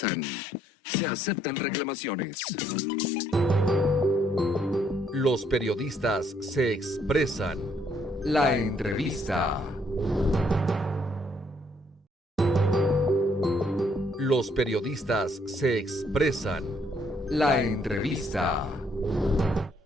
Se aceptan reclamaciones. Los periodistas se expresan. La entrevista. Los periodistas se expresan. La entrevista.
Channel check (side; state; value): both; normal; correlation 0.69